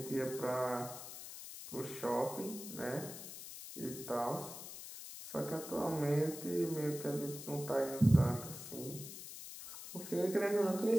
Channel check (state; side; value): noise; left; hiss, 11 dB below the sound